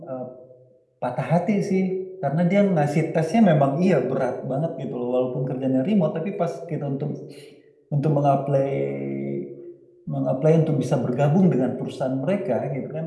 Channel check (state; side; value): identical; both; correlation 1.00